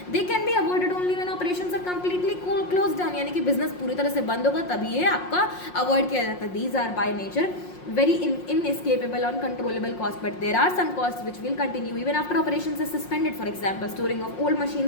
They can be avoided only when operations are completely close down, यानी कि बिजनेस पूरी तरह से बंद होगा तभी ये आपका अवॉइड किया जाता है. These are by nature very inescapable or uncontrollable cost, but there are some costs which will continue even after operations is suspended. For example, storing of old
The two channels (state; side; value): late; right; 5.6 ms